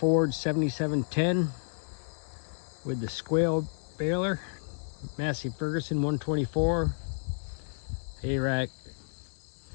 7710 with the square baler, Massey Ferguson 124 hay rack.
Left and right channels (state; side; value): silent; right; 57 dB below the other